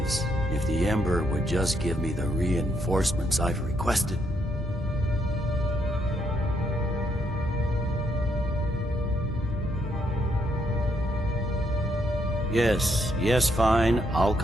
If the Emperor would just give me the reinforcements I've requested. Yes, fine. I'll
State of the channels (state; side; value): normal; both; correlation 0.75